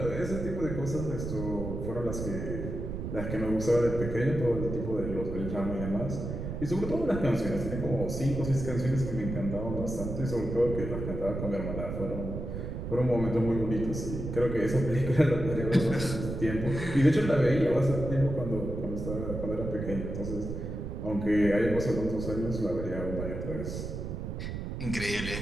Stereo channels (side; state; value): right; noise; rumble, 5 dB below the sound